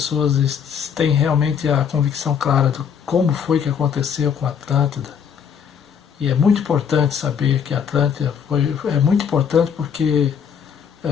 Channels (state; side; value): quieter; right; 7.4 dB